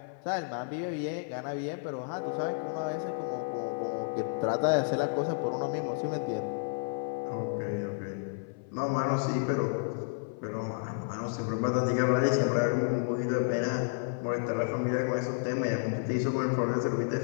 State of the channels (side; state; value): right; silent; 56 dB below the other